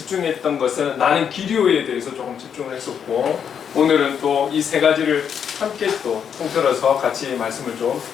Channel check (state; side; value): quieter; right; 7.8 dB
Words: 것은 나는 길이요에 대해서 조금 집중을 했었고, 오늘은 또 이 세 가지를 함께 또 통틀어서 같이 말씀을 좀